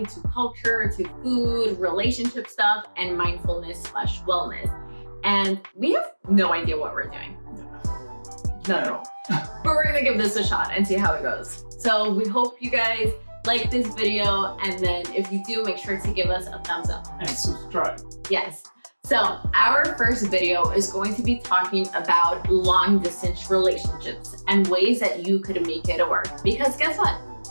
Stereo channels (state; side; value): inverted; both; correlation -1.00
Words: to culture to food, relationship stuff, and mindfulness/wellness. And we have no idea what we're doing. Not at all. But we're gonna give this a shot and see how it goes. So we hope you guys like this video, and then if you do, make sure to give us a thumbs up. And subscribe. Yes. So our first video is going to be talking about long distance relationships and ways that you could make it work. Because guess what?